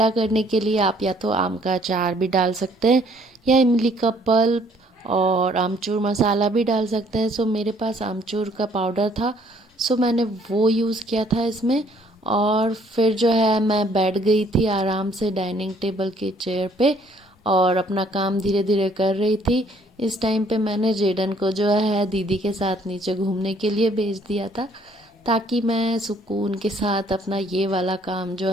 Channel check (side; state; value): both; normal; correlation 0.62